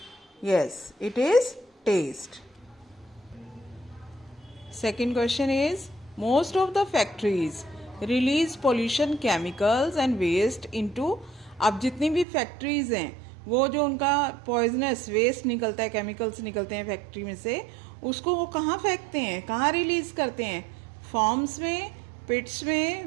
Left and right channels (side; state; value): left; drops out; at 12.2 s